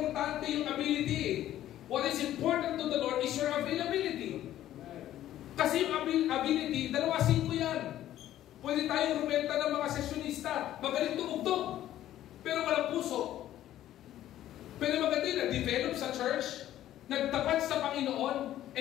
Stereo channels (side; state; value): right; quieter; 12.8 dB